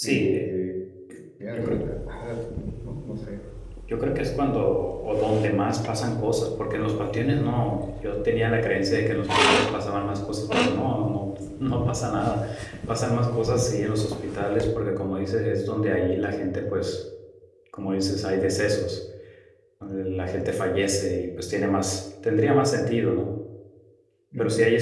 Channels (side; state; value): both; identical; correlation 1.00